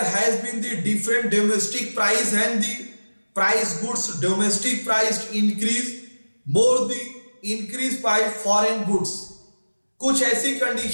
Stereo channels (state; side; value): inverted; both; correlation -1.00